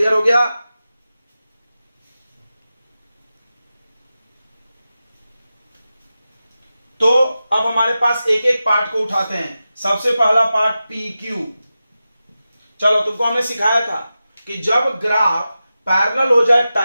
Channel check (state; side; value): inverted; both; correlation -0.93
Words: हो गया। तो अब हमारे पास एक एक पार्ट को उठाते हैं। सबसे पहला पार्ट पी क्यू। चलो तुमको हमने सिखाया था कि जब ग्राफ पैरेलल हो जाए